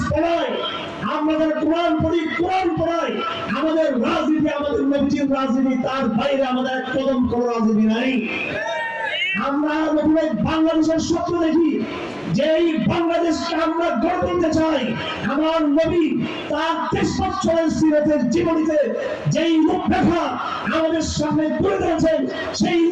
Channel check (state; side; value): identical; both; correlation 1.00